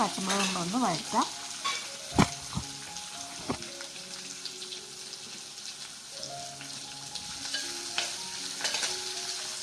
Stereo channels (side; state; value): both; identical; correlation 1.00